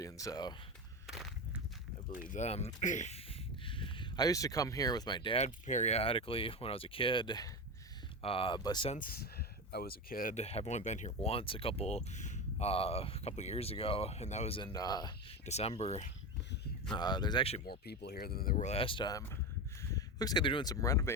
so I believe them. I used to come here with my dad periodically when I was a kid, but since I was a kid, I've only been here once a couple years ago, and that was in December. There's actually more people here than there were last time. Looks like they're doing some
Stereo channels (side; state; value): both; normal; correlation 0.20